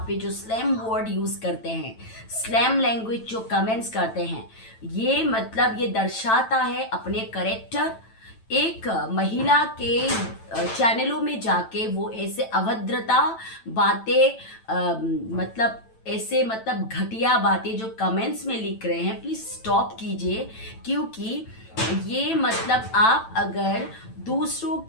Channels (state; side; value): late; right; 9.0 ms